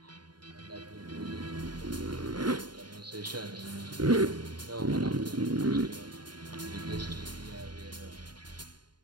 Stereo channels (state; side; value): late; left; 0.71 ms